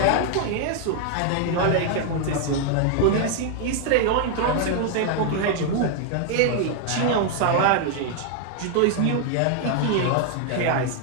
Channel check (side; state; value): both; different; correlation 0.00